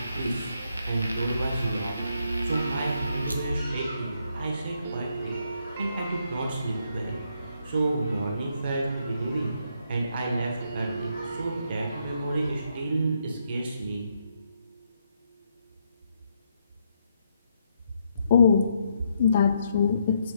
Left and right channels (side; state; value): both; inverted; correlation -0.76